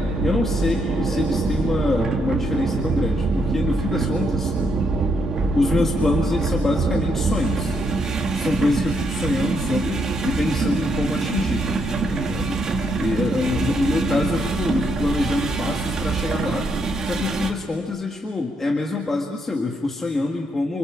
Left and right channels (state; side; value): normal; both; correlation 0.76